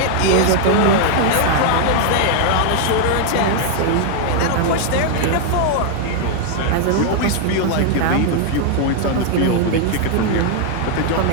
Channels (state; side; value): different; both; correlation 0.00